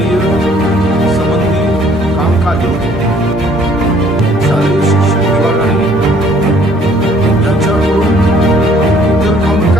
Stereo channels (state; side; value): normal; both; correlation 0.59